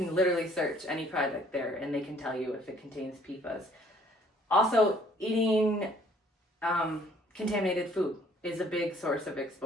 literally search any product there and they can tell you if it contains PFAS. Also, eating contaminated food is a big source of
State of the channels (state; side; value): normal; both; correlation 0.60